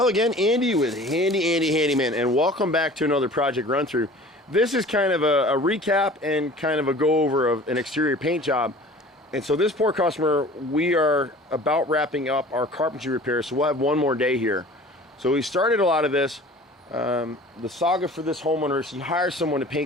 again, Andy with HandyANdy Handyman, and welcome back to another project run through. This is kind of a recap and kind of a go over of an exterior paint job. And so this poor customer, we are about wrapping up our carpentry repairs, so we'll have one more day here. So we started a lot of this. The saga for this homeowner is he hired someone to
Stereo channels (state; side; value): normal; both; correlation 0.44